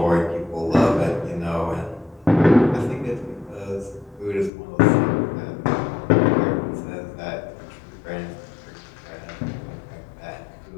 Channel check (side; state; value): right; drops out; at 4.5 s